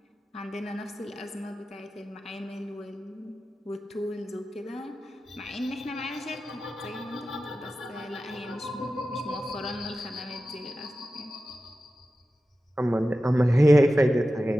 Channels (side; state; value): both; normal; correlation 0.93